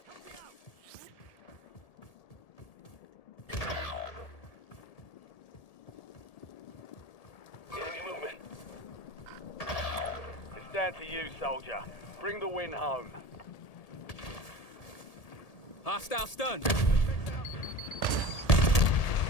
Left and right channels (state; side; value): late; right; 1.8 ms